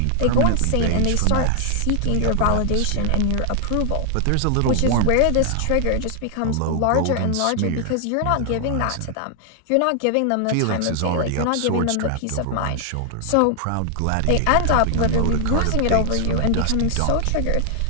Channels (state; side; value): different; both; correlation 0.00